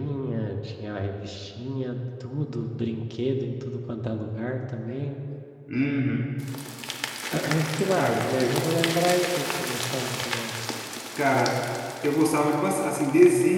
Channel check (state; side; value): identical; both; correlation 1.00